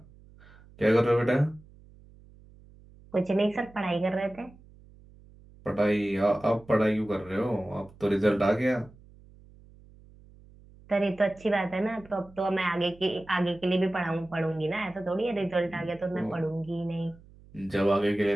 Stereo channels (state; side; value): noise; right; hum, 24 dB below the sound